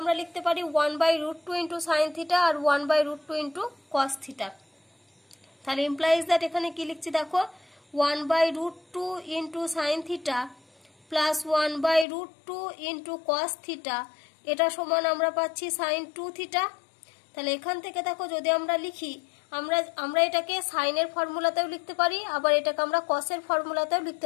লিখতে পারি 1/√2 ইন্টু সাইন থিটা আর 1/√2 ইন্টু কস থিটা। তাহলে ইমপ্লাইজ দ্যাট এখানে কি লিখছি দেখো, 1/√2 into sine theta plus 1/√2 into cos theta, এটা সমান আমরা পাচ্ছি সাইন 2 থিটা। তাহলে এখান থেকে দেখো যদি আমরা লিখি, আমরা এটাকে সাইনের ফর্মুলাতেও লিখতে পারি, আবার এটাকে আমরা কসের ফর্মুলাতেও লিখতে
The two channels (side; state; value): right; drops out; at 12.1 s